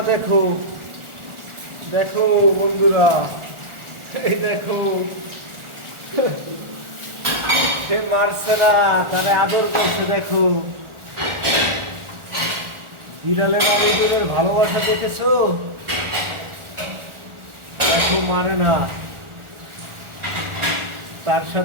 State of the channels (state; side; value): late; left; 1.4 ms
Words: দেখো দেখো বন্ধুরা, এই দেখো সে মারছে না, তারা আদর করছে। দেখো বিড়ালের আর ইঁদুরের ভালোবাসা দেখেছো? দেখো মারে না, তার